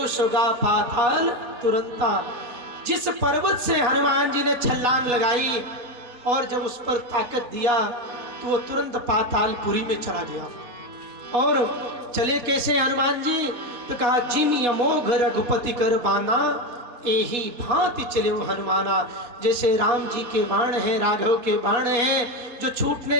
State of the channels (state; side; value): late; left; 4.1 ms